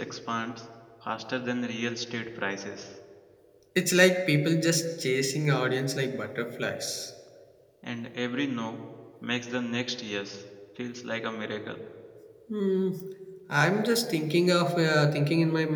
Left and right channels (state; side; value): identical; both; correlation 1.00